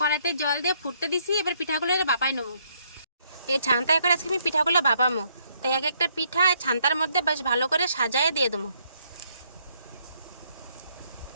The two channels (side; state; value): both; inverted; correlation -0.70